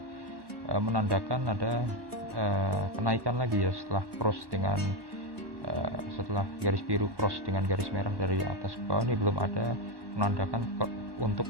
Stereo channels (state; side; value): late; left; 1.1 ms